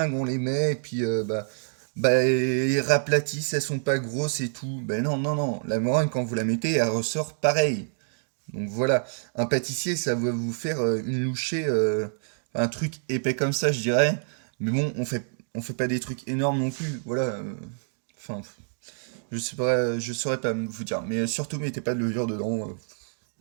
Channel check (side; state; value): left; silent; 60 dB below the other